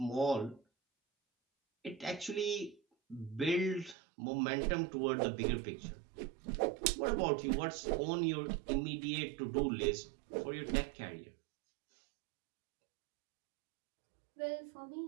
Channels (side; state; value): left; drops out; at 4.0 s